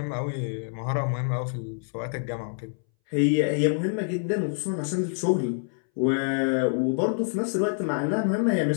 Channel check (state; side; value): silent; right; 61 dB below the other